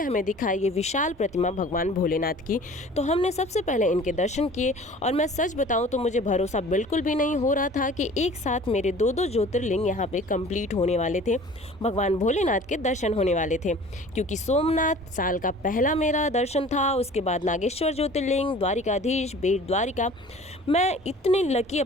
हमें दिखाई ये विशाल प्रतिमा भगवान भोलेनाथ की। तो हमने सबसे पहले इनके दर्शन किए। और मैं सच बताऊं तो मुझे भरोसा बिल्कुल भी नहीं हो रहा था कि एक साथ मेरे 2-2 ज्योतिर्लिंग यहाँ पे कंप्लीट होने वाले थे, भगवान भोलेनाथ के दर्शन होने वाले थे। क्योंकि सोमनाथ साल का पहला मेरा दर्शन था, उसके बाद नागेश्वर ज्योतिर्लिंग, द्वारिकाधीश, बेट द्वारिका। मैं इतनी लकी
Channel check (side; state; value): both; normal; correlation 0.46